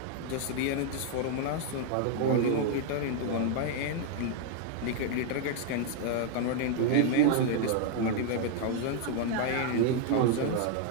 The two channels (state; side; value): different; both; correlation 0.00